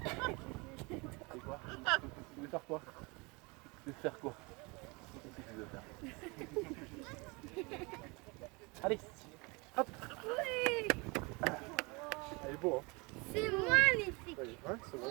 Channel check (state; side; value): quieter; left; 27.8 dB